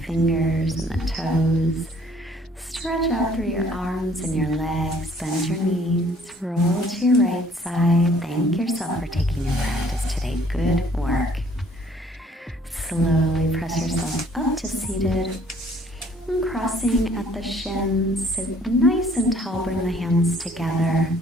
and the toes. Stretch out through your arms and your legs, bend your knees, roll to your right side. Thank yourself for taking your practice today. Good work. Slowly press yourself up to seated. And crossing at the shins, sit nice and tall, bring the hands together.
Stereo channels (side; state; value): both; normal; correlation 0.59